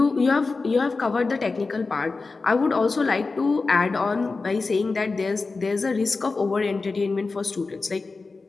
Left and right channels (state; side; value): quieter; right; 4.0 dB